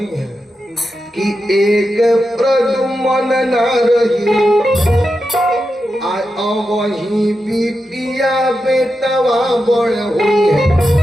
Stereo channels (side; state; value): both; normal; correlation 0.89